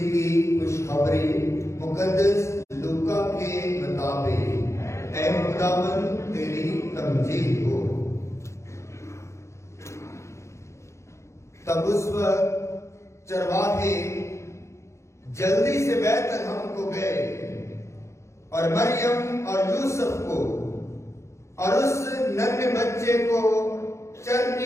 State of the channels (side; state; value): right; late; 0.14 ms